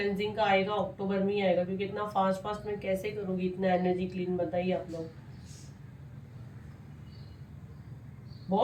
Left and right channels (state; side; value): identical; both; correlation 1.00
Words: का आएगा अक्टूबर में ही आएगा, क्योंकि इतना फास्ट फास्ट मैं कैसे करूंगी इतना एनर्जी क्लीन, बताइए आप लोग।